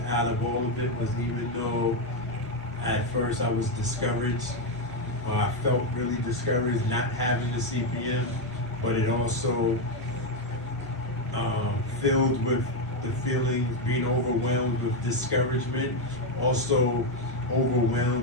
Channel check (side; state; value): left; noise; rumble, 21 dB below the sound